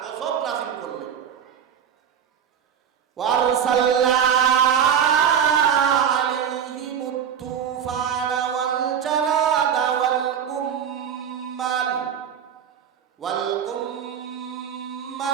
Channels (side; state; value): left; quieter; 8.3 dB